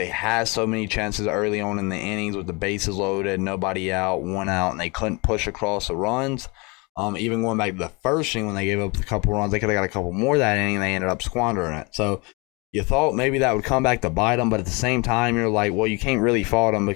had so many chances early on in the innings with the bases loaded, nobody out, 1 out, and they couldn't push across the runs. Even going back to the first inning when they gave up a couple runs, they could have got a couple more that inning, and they ended up squandering it. So you thought maybe that would come back to bite them, but at the same time, you're like, well, you can't really fault them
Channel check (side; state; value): right; quieter; 28.1 dB